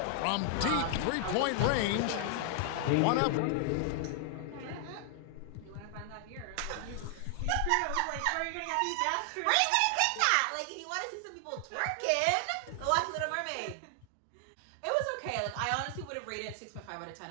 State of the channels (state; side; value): different; both; correlation 0.00